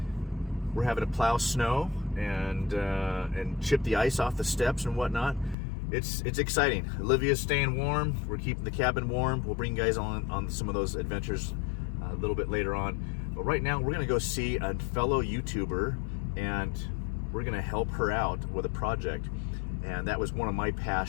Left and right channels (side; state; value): right; drops out; at 5.6 s